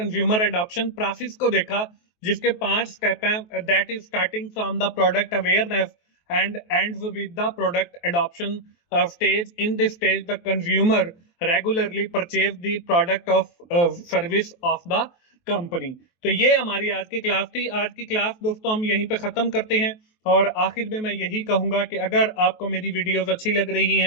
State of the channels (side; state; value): right; late; 23 ms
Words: एडॉप्शन प्रोसेस को देखा, जिसके 5 स्टेप हैं। That is starting from the product awareness and ends with the product adoption stage. In this stage the consumer regularly purchase the product of service of the company. तो ये हमारी आज की class थी। आज की क्लास दोस्तों हम यहीं पे खत्म करते हैं, और आखिर में मैं यही कहूंगा कि अगर आपको मेरी वीडियोस अच्छी लग रही